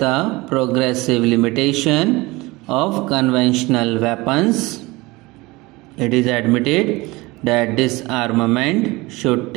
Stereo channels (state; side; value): quieter; left; 22.1 dB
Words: progressive limitation of conventional weapons. It is admitted that disarmament should